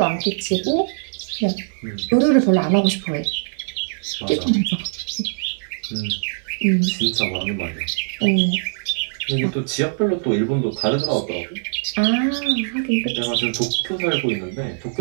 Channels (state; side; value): silent; left; digital silence